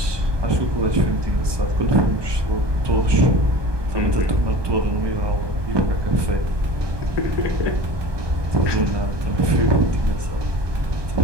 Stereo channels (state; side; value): late; left; 1.2 ms